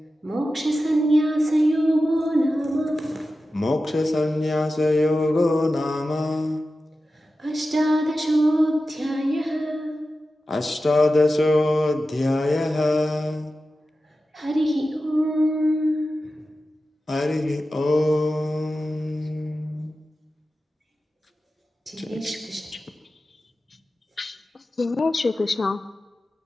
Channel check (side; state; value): both; normal; correlation 0.93